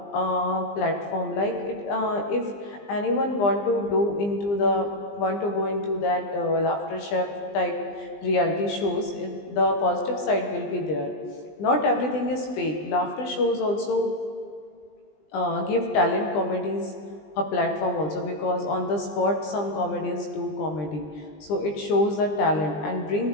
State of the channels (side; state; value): right; late; 20 ms